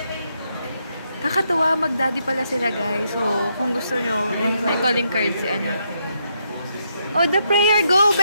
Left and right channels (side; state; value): both; inverted; correlation -0.79